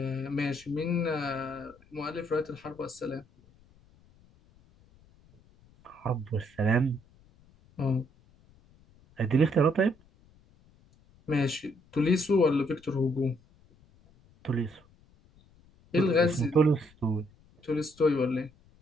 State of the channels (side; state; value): left; noise; rumble, 29 dB below the sound